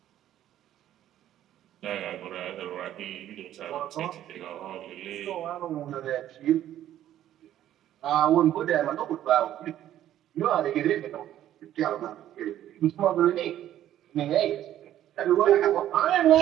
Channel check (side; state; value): left; quieter; 12.1 dB